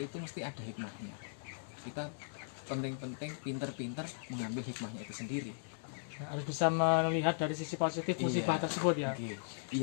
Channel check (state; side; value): silent; right; 53 dB below the other